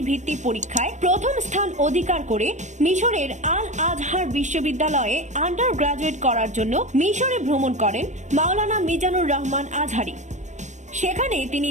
ভিত্তি পরীক্ষায় প্রথম স্থান অধিকার করে মিশরের আল আজহার বিশ্ববিদ্যালয়ে আন্ডার গ্রাজুয়েট করার জন্য মিশরে ভ্রমণ করেন মাওলানা মিজানুর রহমান আজহারী। সেখানে তিনি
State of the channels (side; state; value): left; late; 0.34 ms